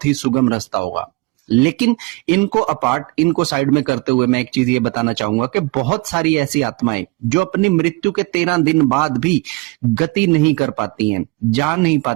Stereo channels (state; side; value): quieter; left; 24.2 dB